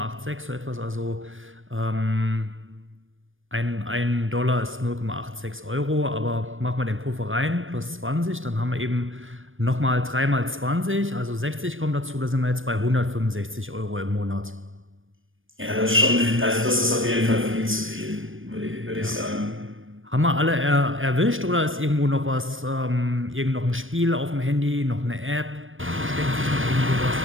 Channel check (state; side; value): late; left; 0.58 ms